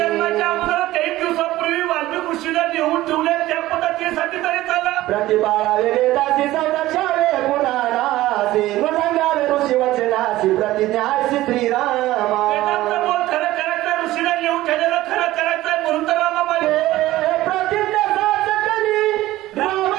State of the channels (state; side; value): quieter; left; 16.3 dB